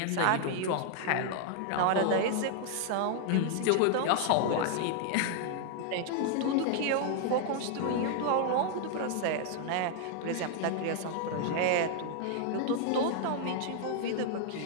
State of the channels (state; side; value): different; both; correlation 0.00